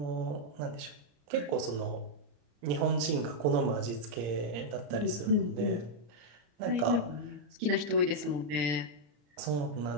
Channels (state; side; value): late; left; 34 ms